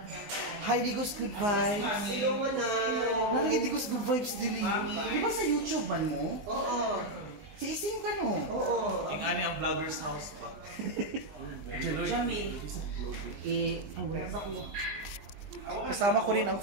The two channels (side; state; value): left; late; 19 ms